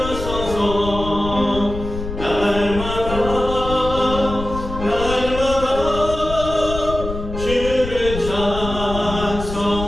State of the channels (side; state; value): left; noise; rumble, 8 dB below the sound